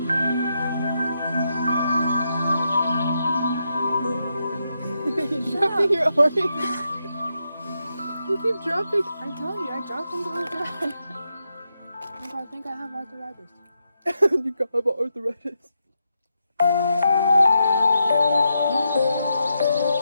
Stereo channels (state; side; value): inverted; both; correlation -0.84